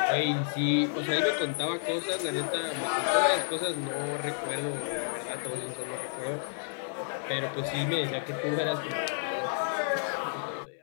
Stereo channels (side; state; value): right; silent; digital silence